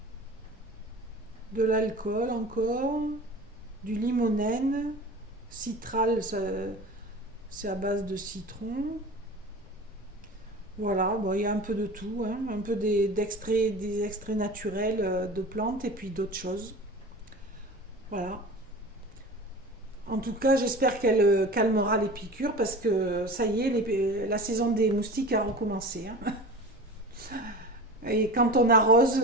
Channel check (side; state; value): both; normal; correlation 0.36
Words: de l'alcool encore, du limonène, citral, c'est à base de citron. Voilà, bon, il y a un peu de tout, hein, un peu des extraits naturels de plantes et puis d'autres choses. Voilà. En tout cas, j'espère qu'elle calmera les piqûres parce que ça y est, la saison des moustiques a recommencé. Hein. Et quand on arrose,